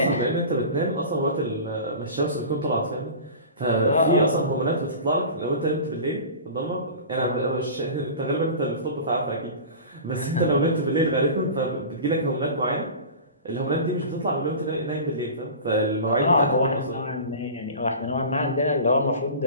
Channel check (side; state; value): both; inverted; correlation -0.35